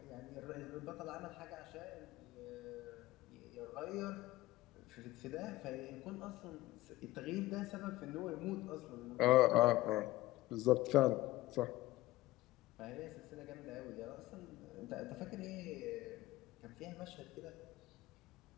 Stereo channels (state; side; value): quieter; right; 17.5 dB